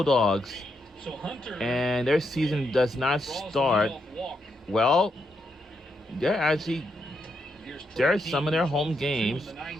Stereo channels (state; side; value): normal; both; correlation 0.81